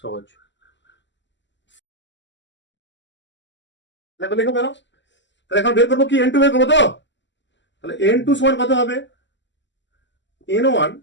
সহজ লেখো কেন তাহলে এখন বের করবো কি N2 বের করবো তো তাহলে N2 সমান কত হবে N1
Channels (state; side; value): late; right; 0.53 ms